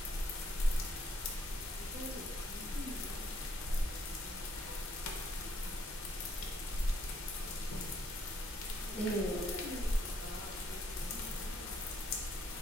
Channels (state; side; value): normal; both; correlation 0.69